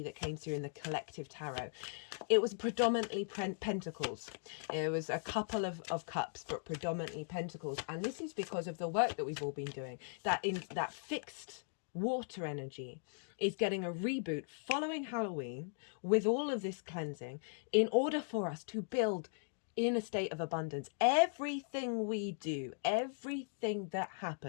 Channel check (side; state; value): right; silent; digital silence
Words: that came through in the collective tarot. It was predominantly pentacles. It was a couple of cups, but predominantly pentacles, and this is because of the work that we've all been doing, that in that fixed water energy is getting a reboot following Halloween with all of this cleansing in order for us to build in a state of abundance. Everything we do, everything that